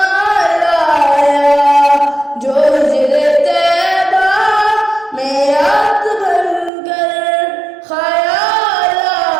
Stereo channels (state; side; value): drops out; left; at 6.7 s